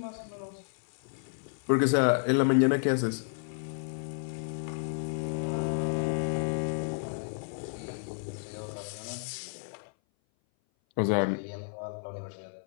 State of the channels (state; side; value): silent; right; 57 dB below the other